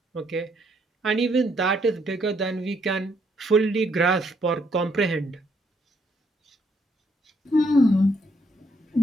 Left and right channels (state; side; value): normal; both; correlation 0.72